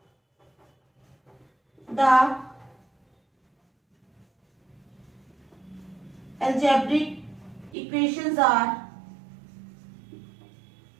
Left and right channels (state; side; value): drops out; left; at 7.8 s